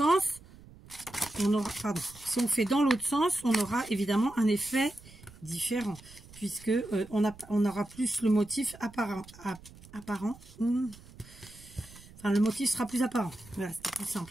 on aura, pardon, si on fait dans l'autre sens, on aura évidemment un effet différent puisque on aura plus le motif apparent. Enfin, le motif sera plus apparent. Voilà, c'est plus simple.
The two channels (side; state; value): right; noise; rumble, 21 dB below the sound